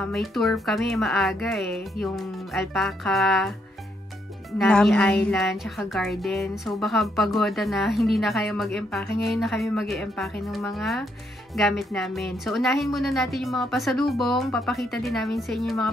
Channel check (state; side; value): normal; both; correlation 0.75